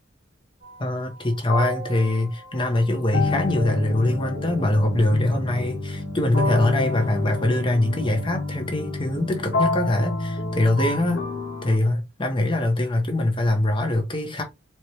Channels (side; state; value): both; normal; correlation 0.75